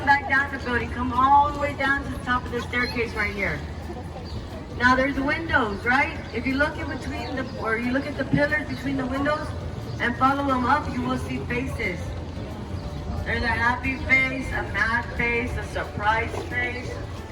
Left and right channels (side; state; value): both; identical; correlation 1.00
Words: back down the building. Come all the way down to the top of the staircase right here. Now there's windows, right? If you look in between or you look at the pillars between the windows and follow them up, you will see faces. There's a happy face, a mad face, a surprise face,